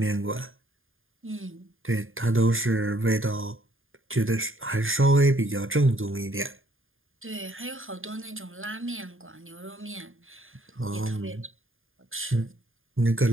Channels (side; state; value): left; late; 0.59 ms